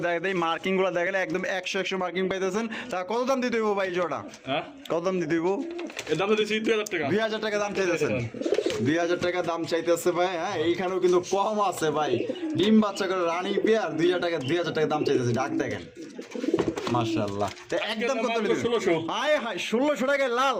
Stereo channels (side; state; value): both; identical; correlation 1.00